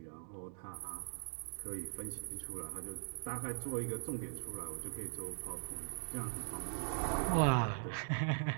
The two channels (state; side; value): silent; left; digital silence